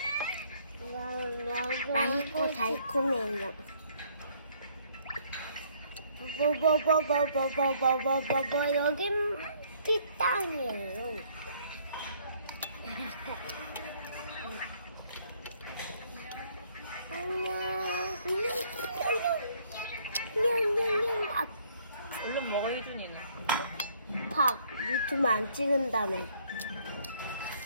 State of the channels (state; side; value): inverted; both; correlation -0.64